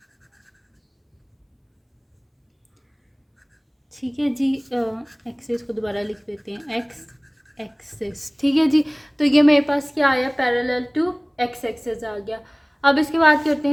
ठीक है जी, एक्सिस को दोबारा लिख देते हैं, एक्स एक्सिस। ठीक है जी, तो ये मेरे पास क्या आया, पैरेलल टू एक्स एक्सिस आ गया। अब इसके बाद करते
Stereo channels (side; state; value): both; identical; correlation 1.00